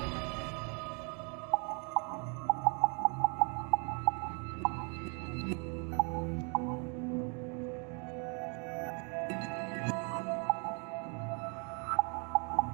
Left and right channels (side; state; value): left; quieter; 36.7 dB